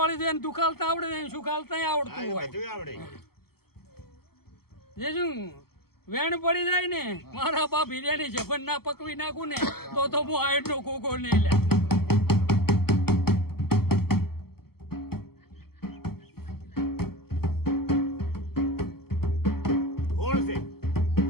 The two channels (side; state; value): right; late; 0.95 ms